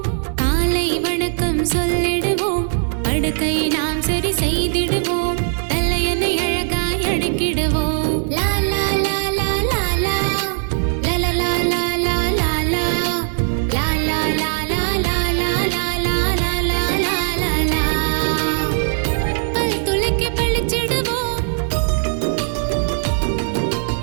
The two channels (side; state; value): left; silent; digital silence